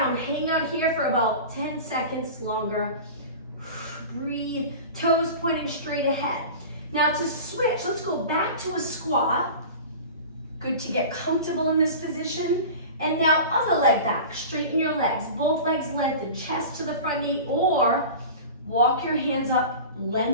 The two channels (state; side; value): inverted; both; correlation -0.35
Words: hang out here for about 10 seconds longer. Breathe, toes pointing straight ahead. Now to switch, let's go back to a squat. Good to get comfortable in this position. And now other leg back, straighten your legs. Both legs lengthen, chest to the front knee, or walk your hands up,